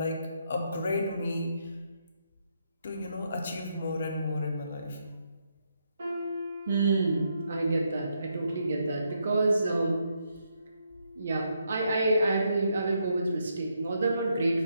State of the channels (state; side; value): inverted; both; correlation -0.78